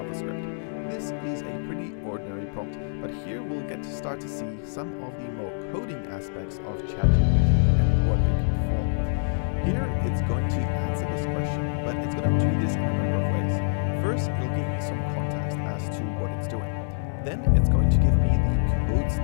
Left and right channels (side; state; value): right; silent; digital silence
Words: This is a pretty ordinary prompt, but here we'll get to start to see some of the more coding aspects of ChatGPT and what it can perform. Here it's going to answer this question, but it's going to do this in a number of ways. First, it'll give me some context as to what it's doing. Then it's going to give me the code